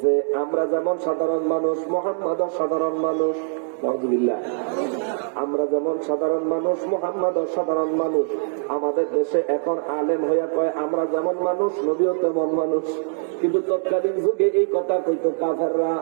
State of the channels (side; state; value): left; silent; digital silence